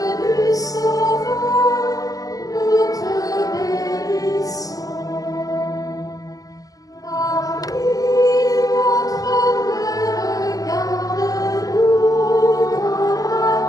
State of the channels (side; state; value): right; late; 0.17 ms